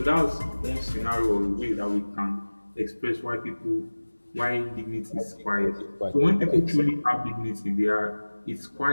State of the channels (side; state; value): both; inverted; correlation -1.00